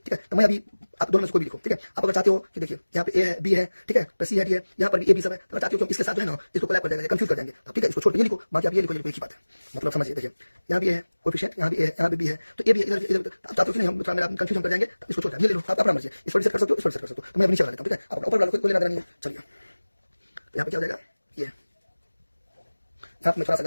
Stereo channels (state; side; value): inverted; both; correlation -1.00